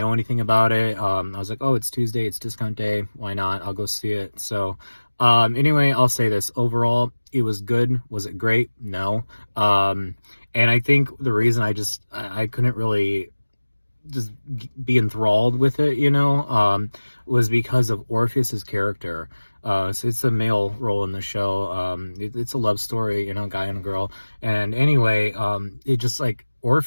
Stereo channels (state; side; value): inverted; both; correlation -1.00